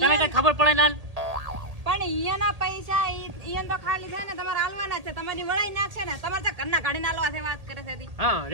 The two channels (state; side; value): late; left; 1.8 ms